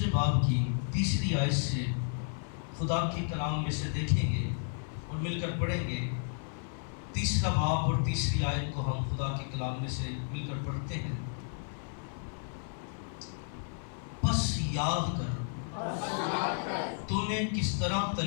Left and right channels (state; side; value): silent; right; 56 dB below the other